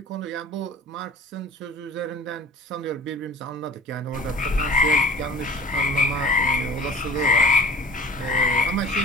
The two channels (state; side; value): normal; both; correlation 0.43